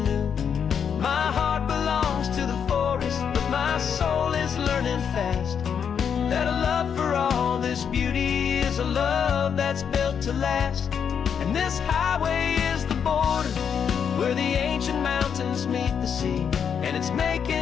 new. My heart belongs to the forest, but my soul is learning fast that a love for all this beauty is a love that's built to last. And this highway is the border where the ancient mountains meet the sea, and it's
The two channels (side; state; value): right; quieter; 7.4 dB